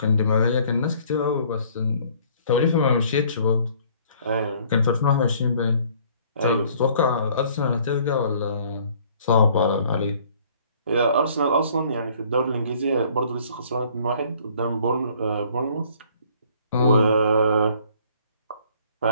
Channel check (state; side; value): inverted; both; correlation -0.58